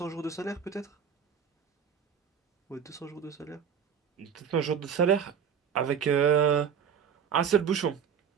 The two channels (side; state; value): left; quieter; 7.6 dB